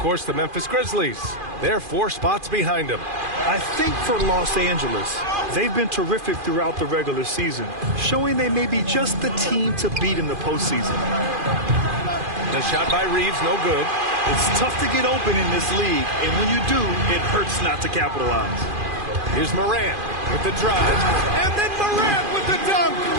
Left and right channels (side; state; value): left; late; 2.4 ms